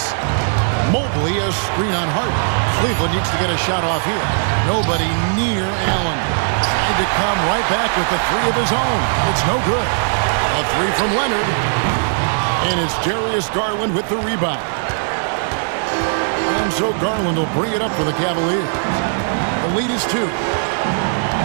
Mobley, a screen on Harden. Cleveland needs to get a shot off here. Nobody near Allen. Tried to come right back with the 3 of his own. It's no good. A 3 from Leonard. And it's Darius Garland with the rebound. And so Garland will bring it up for the Cavaliers. The lead is 2.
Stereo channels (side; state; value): left; silent; digital silence